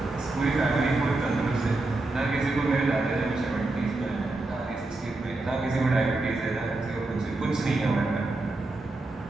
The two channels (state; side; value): quieter; left; 3.0 dB